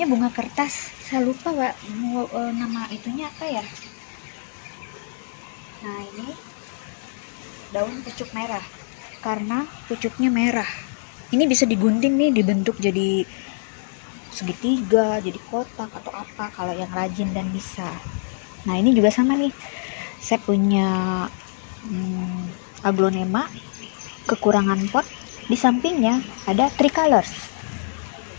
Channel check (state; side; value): silent; right; digital silence